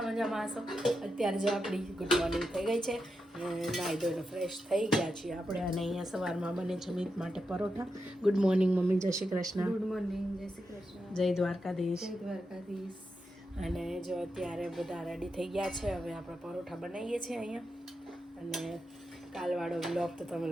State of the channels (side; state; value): both; normal; correlation 0.87